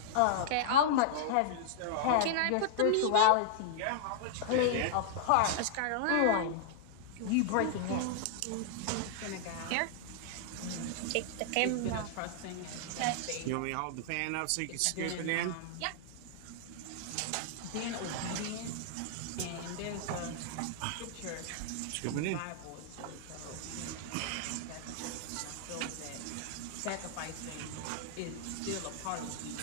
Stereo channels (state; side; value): different; both; correlation -0.01